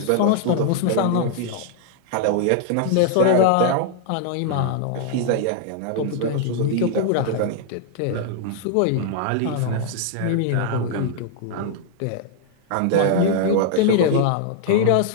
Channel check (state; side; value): different; both; correlation 0.00